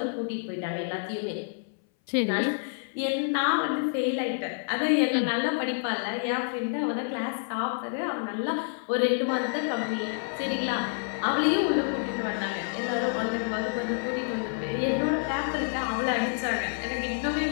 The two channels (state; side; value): silent; right; 59 dB below the other